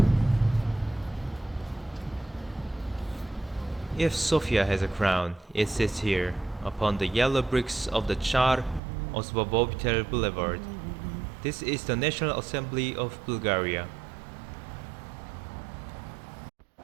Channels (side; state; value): left; drops out; at 8.8 s